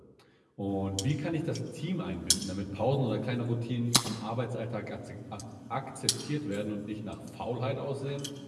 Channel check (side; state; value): both; identical; correlation 1.00